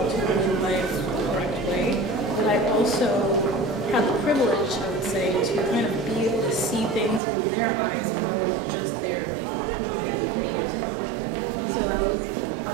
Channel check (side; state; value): left; drops out; at 7.2 s